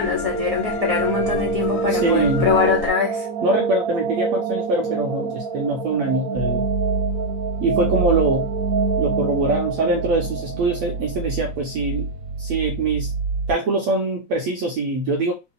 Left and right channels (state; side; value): late; left; 4.0 ms